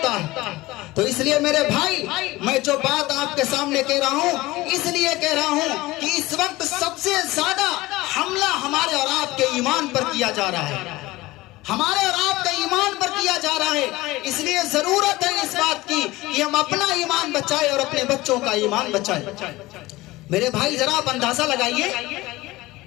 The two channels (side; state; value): right; quieter; 19.3 dB